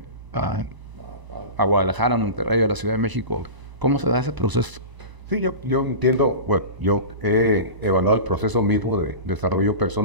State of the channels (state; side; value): late; left; 1.0 ms